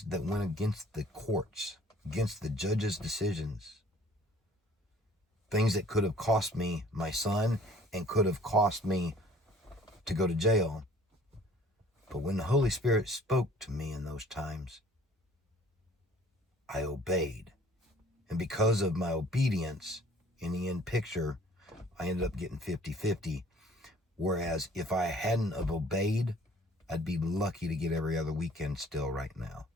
that went against the courts, against the judge's decisions. Things that could have cost me my son and could have cost me to go to jail. But when the Holy Spirit spoke to me in those times, I obeyed. And because of my obedience, in the end picture, I ended up getting 50-50. Whereas if I hadn't have obeyed, I'd be lucky to get every other weekend still right now.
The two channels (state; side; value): normal; both; correlation 0.53